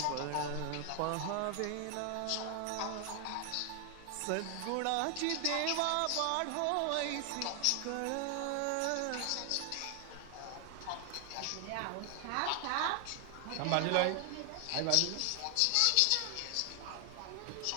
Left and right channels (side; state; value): both; different; correlation 0.00